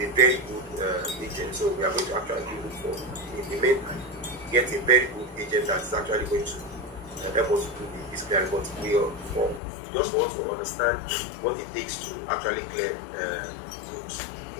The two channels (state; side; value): drops out; right; at 9.6 s